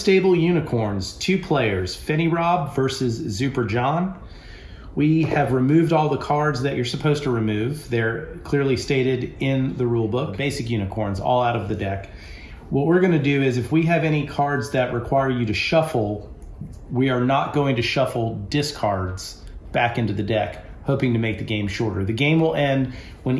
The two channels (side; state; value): both; identical; correlation 1.00